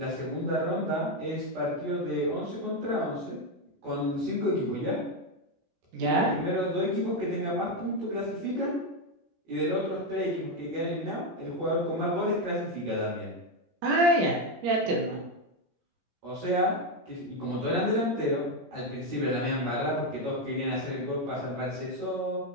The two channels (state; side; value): late; left; 17 ms